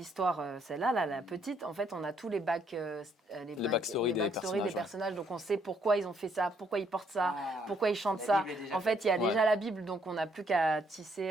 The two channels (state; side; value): normal; both; correlation 0.70